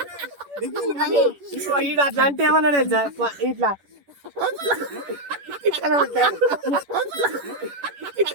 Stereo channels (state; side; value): late; left; 11 ms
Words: అట్లా అంటే ఏమన్నా తెలుసా, ఇట్లా